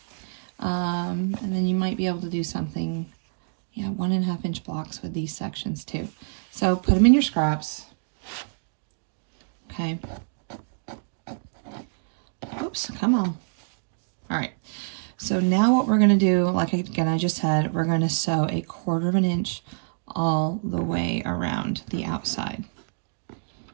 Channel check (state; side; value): silent; left; digital silence